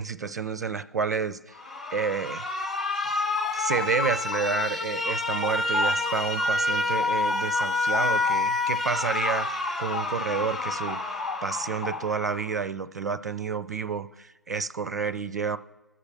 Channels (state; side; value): normal; both; correlation 0.44